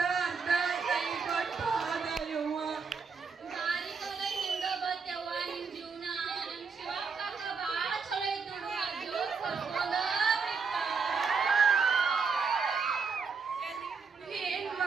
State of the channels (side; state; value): left; quieter; 5.2 dB